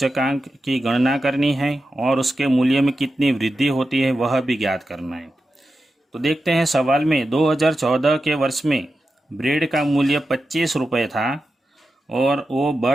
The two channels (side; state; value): both; normal; correlation 0.91